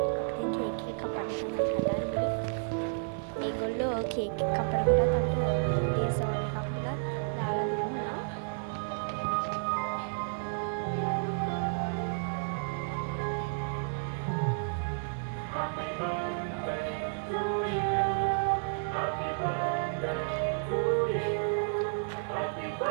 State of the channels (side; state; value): left; silent; 57 dB below the other